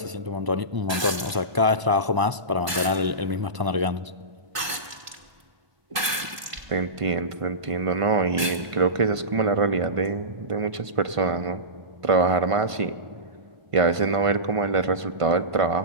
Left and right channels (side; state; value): left; late; 1.5 ms